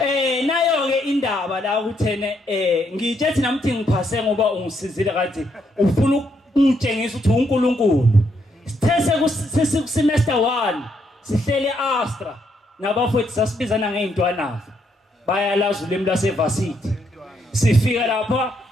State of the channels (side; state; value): both; normal; correlation 0.75